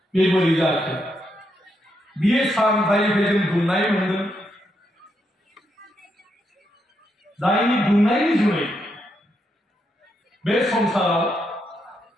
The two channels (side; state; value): both; normal; correlation 0.80